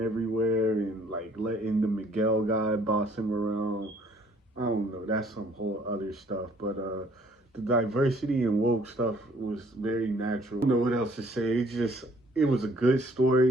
everywhere and like letting the Miguel guy boss him around. I don't know, that's some whole other stuff, but the diversity and woke stuff was very natural. I don't know what else to say. It was a good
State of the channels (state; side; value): normal; both; correlation 0.60